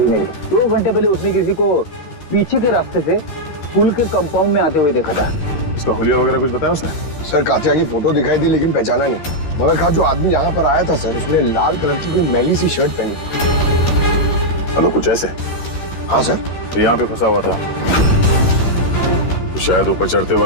मेरी। 2 घंटे पहले उसने किसी को पीछे के रास्ते से पुल के कंपाउंड में आते हुए देखा था। उसका हुलिया वगैरह कुछ बताया उसने? सर कातिया की फोटो दिखाई दी लेकिन पहचाना नहीं। मगर कहा जो आदमी यहाँ पर आया था सर, उसने लाल कलर की कोई मैली सी शर्ट पहनी। हेलो, कुछ ऐसे? हाँ सर। तो यहाँ पे फंसा हुआ था, तो शायद ऊपर चढ़ते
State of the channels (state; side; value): late; right; 13 ms